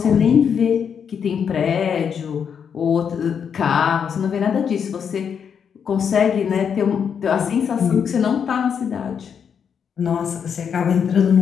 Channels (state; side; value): quieter; right; 7.3 dB